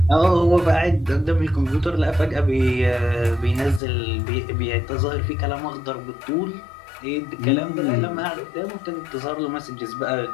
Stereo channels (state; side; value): drops out; right; at 3.8 s